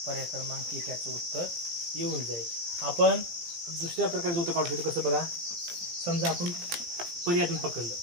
पर्याय क्रमांक 1 याचं उत्तर येऊन जाईल. आपण दुसऱ्या प्रकारचं उत्तर काढू शकतो. कसं बघा, समजा आपण पर्यायातून पकडलं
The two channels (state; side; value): late; left; 18 ms